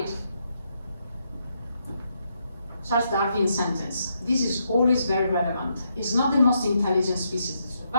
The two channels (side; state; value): both; inverted; correlation -0.78